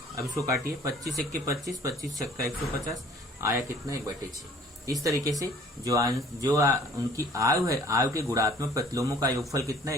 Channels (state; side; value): normal; both; correlation 0.52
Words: अब इसको काटिए, 25 1 के 25, 25 छक्का 150, आया कितना? 1/6। इस तरीके से जो उनकी आयु है, आयु के गुणात्मक प्रतिलोमों का योगफल कितना?